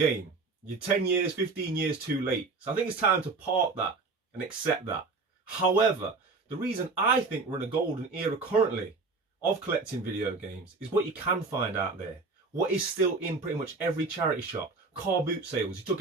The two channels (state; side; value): quieter; left; 4.0 dB